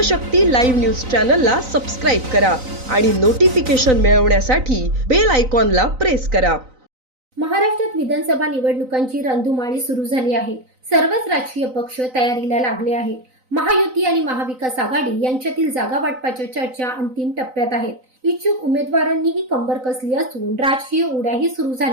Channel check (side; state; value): left; late; 3.9 ms